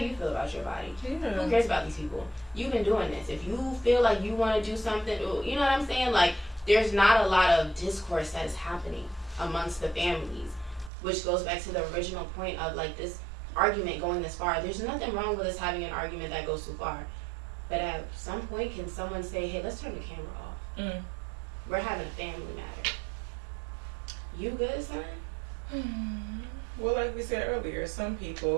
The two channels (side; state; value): left; drops out; at 10.9 s